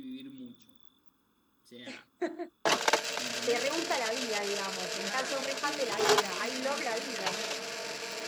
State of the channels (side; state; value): both; identical; correlation 1.00